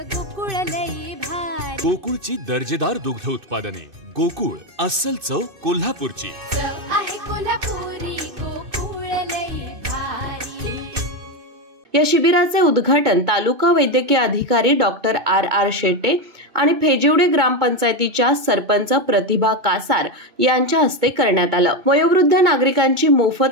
गोकुळ लई भारी। गोकुळची दर्जेदार दुग्ध उत्पादने गोकुळ अस्सल चव कोल्हापूरची आहे कोल्हापुरी गोकुळ लई भारी। या शिबिराचे उद्घाटन तालुका वैद्यकीय अधिकारी डॉक्टर आर शेटे आणि फेजिवडे ग्रामपंचायतीच्या सरपंच प्रतिभा कासार यांच्या हस्ते करण्यात आलं। वयोवृद्ध नागरिकांची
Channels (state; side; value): late; left; 2.6 ms